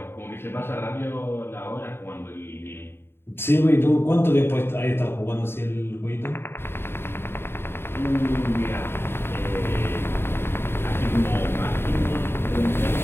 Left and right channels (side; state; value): right; late; 0.11 ms